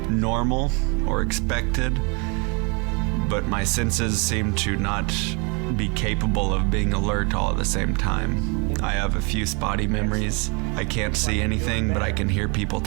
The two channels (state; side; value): quieter; left; 32.1 dB